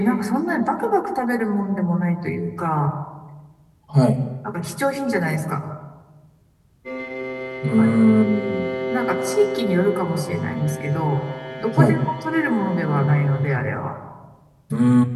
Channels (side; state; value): both; identical; correlation 1.00